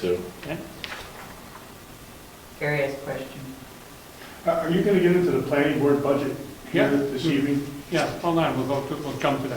Okay. Gary has a question. Are you going to get into the planning board budget here Yeah. this evening? Yeah, hold on, we'll jump to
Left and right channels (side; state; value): both; identical; correlation 1.00